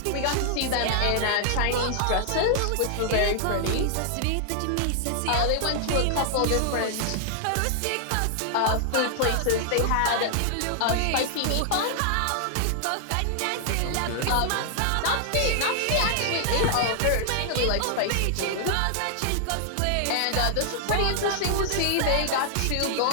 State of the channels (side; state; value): both; different; correlation -0.01